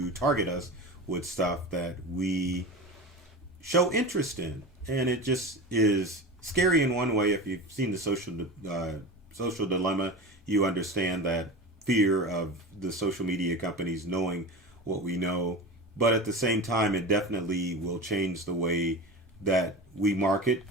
target us with stuff that we show interest in. And it just is scary in one way. If you've seen the social dilemma, you understand that fear of the social media companies knowing what we know but at the same time, it definitely will change the way that we market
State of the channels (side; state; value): both; normal; correlation 0.29